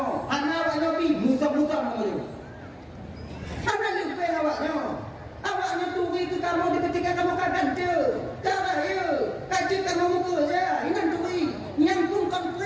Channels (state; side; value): identical; both; correlation 1.00